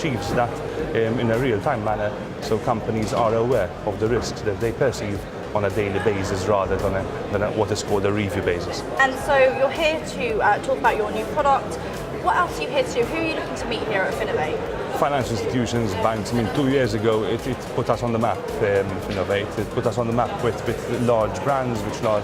that in a real-time manner, so companies are aware of the risks that they perceive on a daily basis rather than what is called a review basis. And so you're here to talk about your new product. What else are you here to do? Who are you looking to meet here at Finovate? Financial institutions, banks. 2 years ago it put us on the map, Finovate. It put us on the map with large brands, with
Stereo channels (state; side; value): identical; both; correlation 1.00